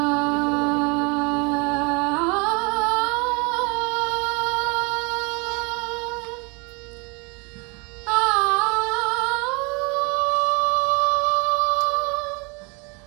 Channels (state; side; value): quieter; left; 29.4 dB